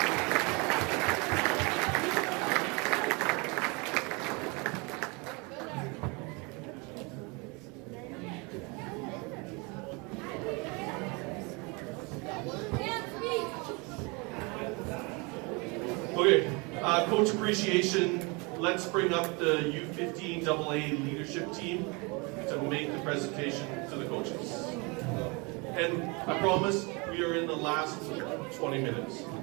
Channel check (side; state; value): left; quieter; 29.1 dB